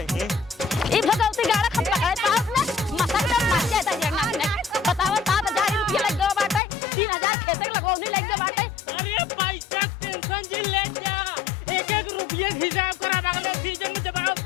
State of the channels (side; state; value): right; drops out; at 6.6 s